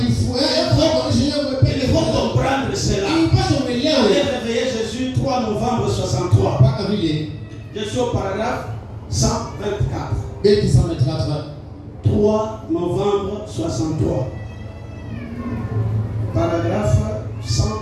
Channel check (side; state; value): both; identical; correlation 1.00